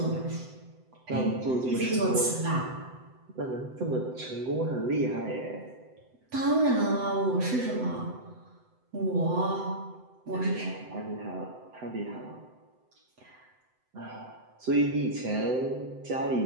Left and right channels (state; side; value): late; left; 7.9 ms